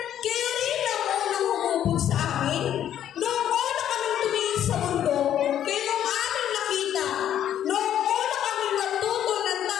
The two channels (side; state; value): right; quieter; 10.6 dB